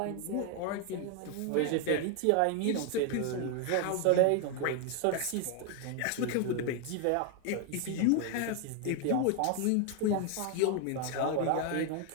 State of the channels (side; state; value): both; different; correlation 0.01